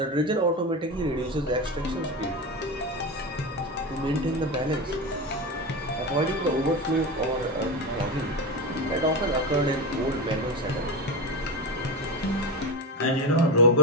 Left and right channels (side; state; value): both; normal; correlation 0.20